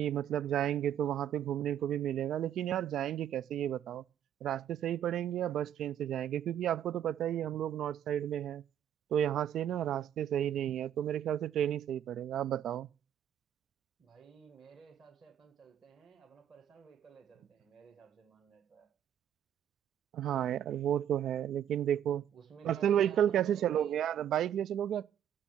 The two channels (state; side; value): quieter; left; 10.2 dB